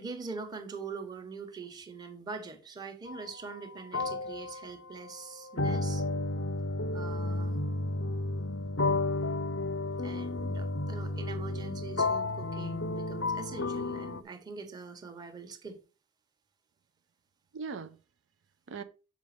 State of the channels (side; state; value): both; normal; correlation 0.19